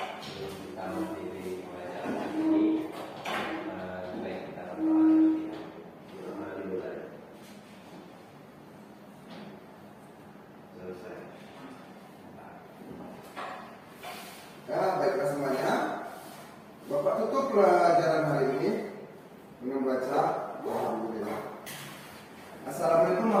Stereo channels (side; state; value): both; identical; correlation 1.00